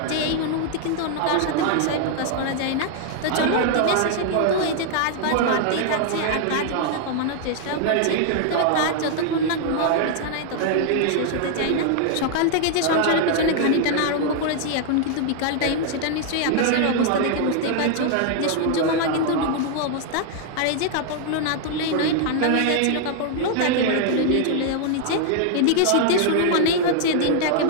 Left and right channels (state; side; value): different; both; correlation 0.00